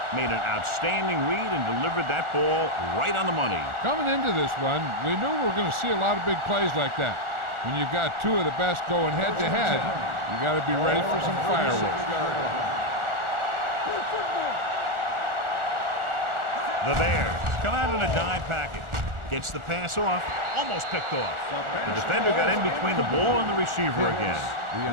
made an outstanding read and delivered that ball right on the money. Coming into this one, we knew we were going to see a lot of big plays like that. When you've got two of the best going head-to-head, you got to be ready for some fireworks. The Bears come out in a dime package. Gets the pass off, almost picked off. The defender got in between the ball and the receiver again. The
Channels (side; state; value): left; late; 1.4 ms